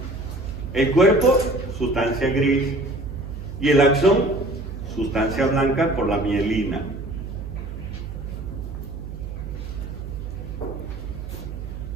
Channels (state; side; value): noise; right; hum, 9 dB below the sound